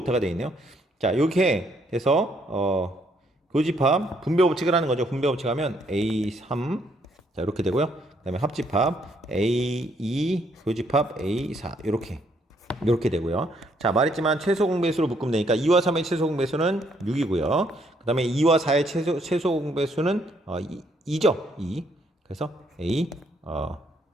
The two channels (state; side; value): normal; both; correlation 0.70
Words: 되어 있네요. 자, 이렇게 해서 교집합 분배 법칙을 하는 거죠. 분배 법칙 하면 A3, 자, 이렇게 되고요. 그 다음에 합집합 A2, 교집합 A4, 이렇게 되고요. 자, 말했지만 최소 공배수로 묶으면 되니까 2와 3의 최소 공배수는 6이고요. 그 다음에 2와 4의 최소 공배수는 2죠. 2. 그래서 A